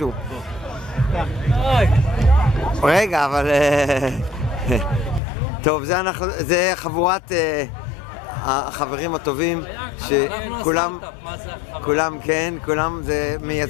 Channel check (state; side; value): drops out; right; at 5.2 s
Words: רגע, אבל... טוב, זה חבורת החברים הטובים, כולם כן, כולם זה